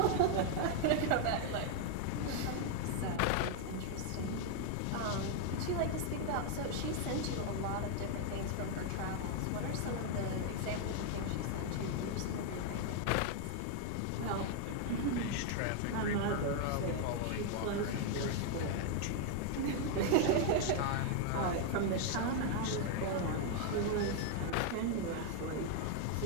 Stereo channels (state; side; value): different; both; correlation 0.00